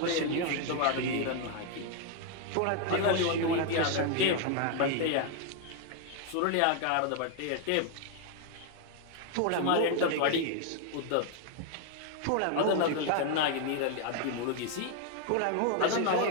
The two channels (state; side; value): different; both; correlation 0.01